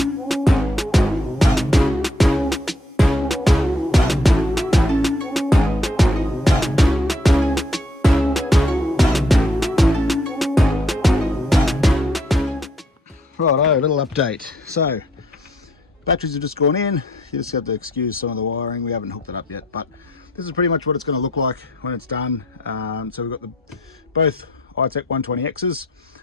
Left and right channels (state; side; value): normal; both; correlation 0.67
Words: Righto, a little update. So batteries have just gone in. You just have to excuse some of the wiring. We haven't hooked it up yet, but this is pretty much what it's going to look like when it's done. So we've got both iTECH 120Xs,